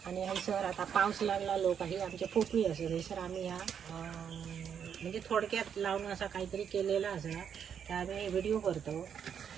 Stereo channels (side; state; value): left; quieter; 8.0 dB